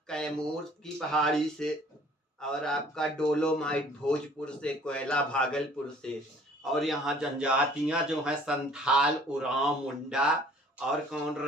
कैमूर की पहाड़ी से, और आपका डोलोमाइट भोजपुर से, कोयला भागलपुर से। और यहाँ जनजातियां जो हैं संथाल, उरांव, मुंडा और कौन,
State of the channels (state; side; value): normal; both; correlation 0.54